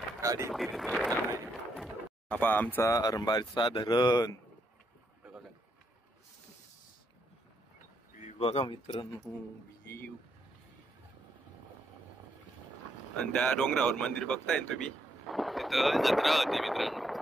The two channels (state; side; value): normal; both; correlation 0.77